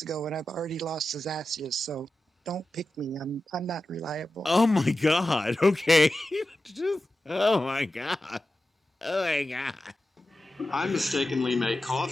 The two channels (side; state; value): both; normal; correlation 0.93